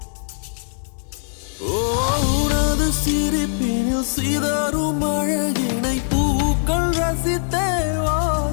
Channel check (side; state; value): right; silent; 65 dB below the other